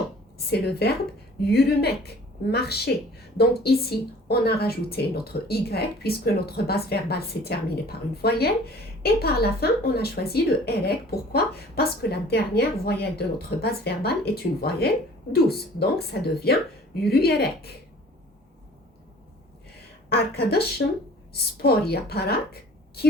C'est le verbe yürümek, marcher. Donc ici, on a rajouté notre y puisque notre base verbale s'est terminée par une voyelle. Et par la fin, on a choisi le erek. Pourquoi? Parce que la dernière voyelle de notre base verbale est une voyelle douce. Donc ça devient yürüyerek. Arkadaşım spor yaparak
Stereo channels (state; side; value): normal; both; correlation 0.49